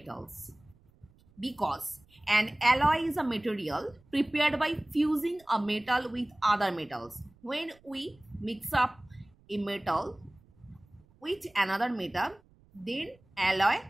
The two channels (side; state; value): right; noise; rumble, 30 dB below the sound